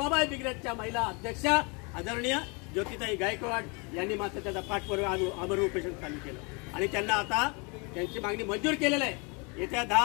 ब्रिगेडच्या महिला अध्यक्षा आदरणीय ज्योतिताई गायकवाड यांनी मात्र त्याचा पाठपुरावा आमरण उपोषण चालू केलं आणि त्यांना आता त्यांची मागणी मंजूर केलेली आहे। येत्या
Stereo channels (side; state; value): right; quieter; 31.4 dB